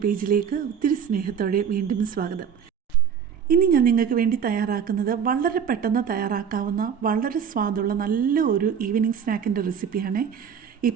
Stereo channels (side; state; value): left; quieter; 7.5 dB